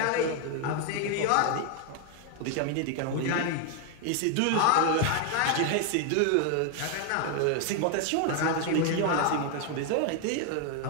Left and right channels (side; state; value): both; different; correlation 0.01